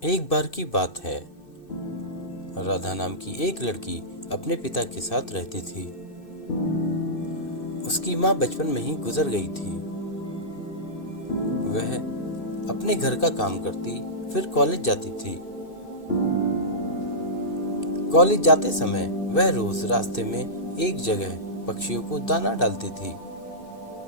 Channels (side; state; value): right; late; 2.6 ms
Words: एक बार की बात है, राधा नाम की एक लड़की अपने पिता के साथ रहती थी। उसकी माँ बचपन में ही गुजर गई थी। वह अपने घर का काम करती, फिर कॉलेज जाती थी। कॉलेज जाते समय वह रोज रास्ते में एक जगह पक्षियों को दाना डालती थी।